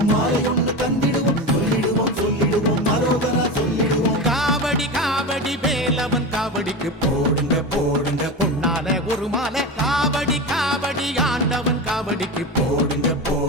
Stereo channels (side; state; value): both; normal; correlation 0.23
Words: மாலை ஒன்று தந்திடுவோம் சொல்லிடுவோம் மரோகரா சொல்லிடுவோம். காவடி காவடி வேலவன் காவடிக்கு போடுங்க போடுங்க பொன்னால ஒரு மாலை, காவடி காவடி ஆண்டவன் காவடிக்கு போடுங்க